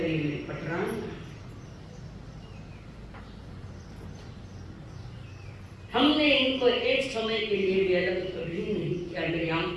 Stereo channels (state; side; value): identical; both; correlation 1.00